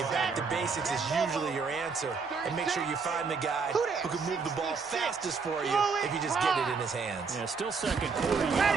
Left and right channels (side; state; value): left; quieter; 5.1 dB